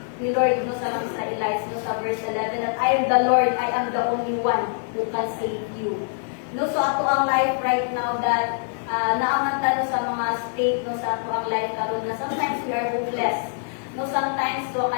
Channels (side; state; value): right; silent; 62 dB below the other